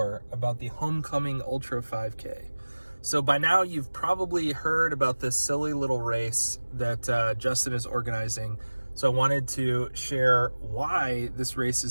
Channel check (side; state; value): both; inverted; correlation -1.00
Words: about the Homecoming Ultra 5K. So by now, you've probably heard about this silly little race that Justin is organizing, so I wanted to share why this race